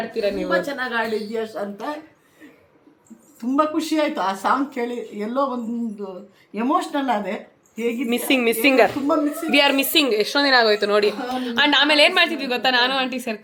ನೀವು. ತುಂಬ ಚೆನ್ನಾಗಿ ಆಡಿದ್ಯಾ ಅಂತ ತುಂಬ ಖುಷಿ ಆಯಿತು ಆ ಸಾಂಗ್ ಕೇಳಿ. ಎಲ್ಲೋ ಒಂದು ಎಮೋಷ್ನಲ್ ಆದೆ. ಹೇಗೆ ಮಿಸ್ಸಿಂಗರ್ ವಿ ಆರ್ ಮಿಸ್ಸಿಂಗ್. ಎಷ್ಟೊಂದು ದಿನ ಆಗೋಯ್ತು ನೋಡಿ. ಆ್ಯಂಡ್ ಆಮೇಲೆ ಏನು ಮಾಡ್ತಿದ್ವಿ ಗೊತ್ತಾ, ನಾನು ಆಂಟಿ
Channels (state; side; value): identical; both; correlation 1.00